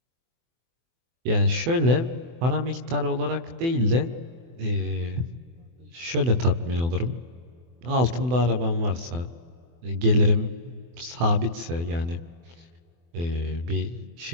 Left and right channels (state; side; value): late; left; 24 ms